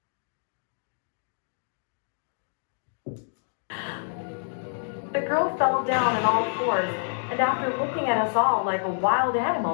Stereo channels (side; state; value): right; silent; digital silence